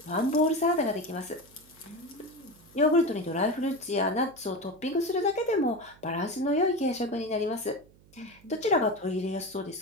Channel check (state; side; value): noise; right; hum, 27 dB below the sound